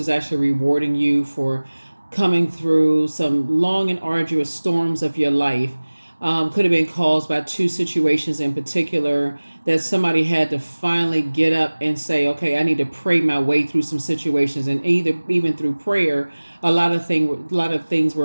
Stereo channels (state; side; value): inverted; both; correlation -1.00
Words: actually rewarding you for coming through some long and arduous storms of your life. Could have been caused by two situations in particular that somebody had to finally get up and say, okay, I need to pray my way through some situations, and even through prayer, a lot of things